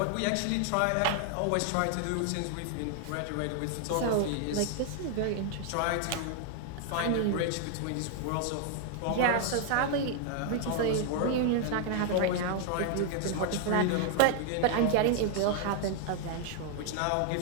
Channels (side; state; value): both; different; correlation 0.00